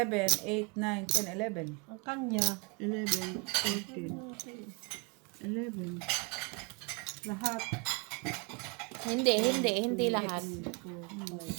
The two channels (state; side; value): quieter; left; 31.9 dB